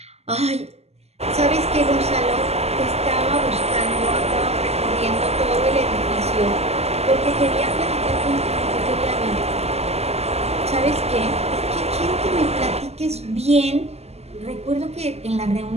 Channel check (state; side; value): late; left; 0.30 ms